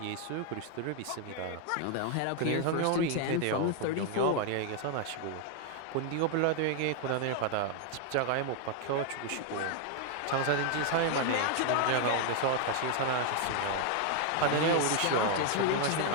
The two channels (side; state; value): both; different; correlation 0.00